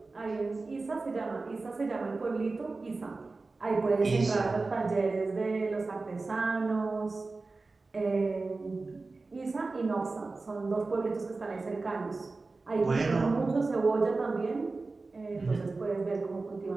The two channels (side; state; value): left; quieter; 3.7 dB